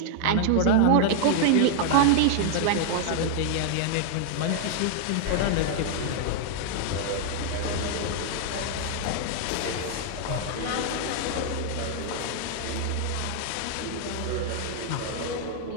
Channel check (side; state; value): both; different; correlation -0.01